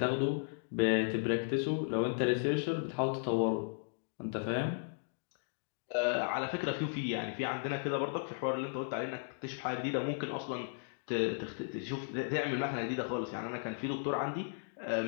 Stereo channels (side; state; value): right; silent; digital silence